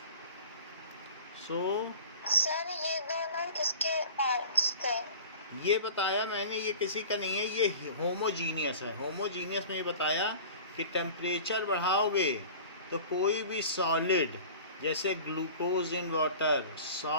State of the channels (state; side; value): inverted; both; correlation -0.40